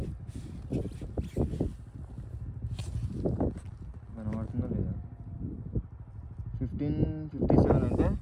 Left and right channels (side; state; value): both; identical; correlation 1.00